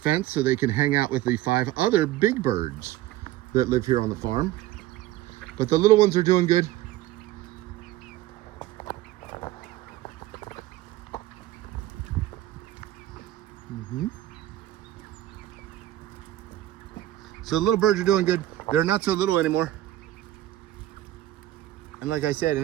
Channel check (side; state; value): left; quieter; 14.9 dB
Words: so they can hang out with the 5 other big birds that live here on the farm. But the little ones are doing good. So the little birds are doing good. They're not so little anymore. And like I said,